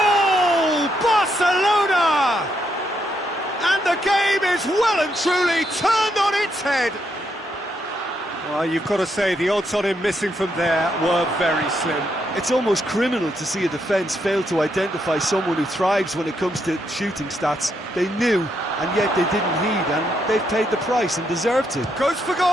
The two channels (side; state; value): both; normal; correlation 0.78